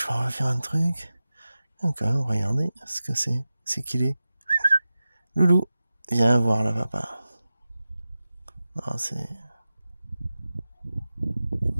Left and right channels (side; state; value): both; inverted; correlation -0.94